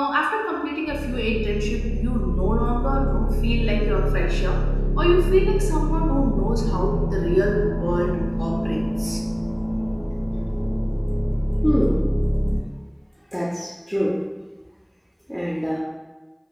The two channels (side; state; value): both; identical; correlation 1.00